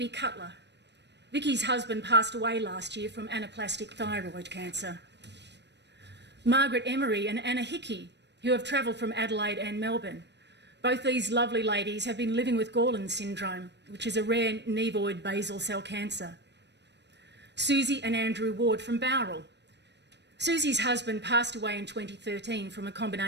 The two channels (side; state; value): left; late; 0.50 ms